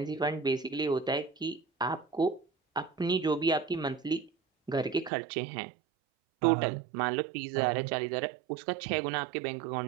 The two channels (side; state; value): left; drops out; at 5.1 s